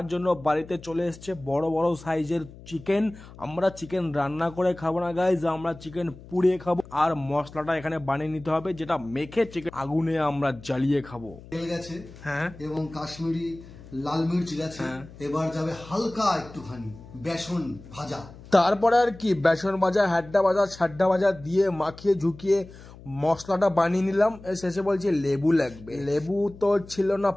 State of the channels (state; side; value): noise; left; hum, 19 dB below the sound